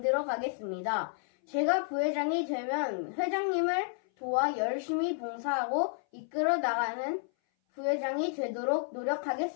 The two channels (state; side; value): silent; right; 57 dB below the other